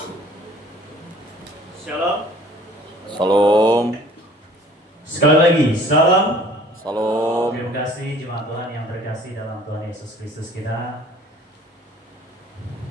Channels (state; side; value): normal; both; correlation 0.52